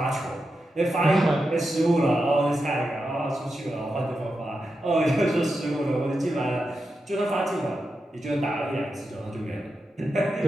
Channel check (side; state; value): both; normal; correlation 0.88